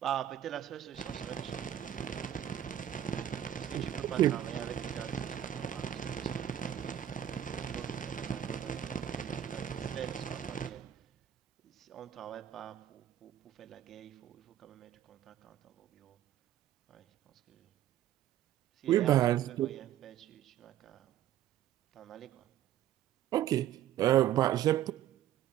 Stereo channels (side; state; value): left; quieter; 11.2 dB